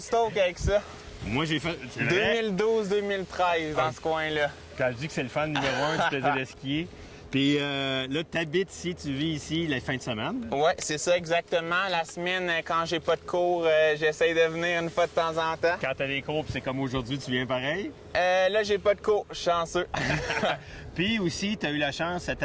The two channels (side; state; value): both; identical; correlation 1.00